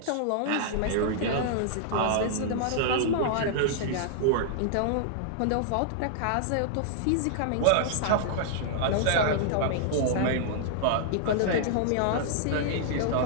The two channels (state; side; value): different; both; correlation -0.01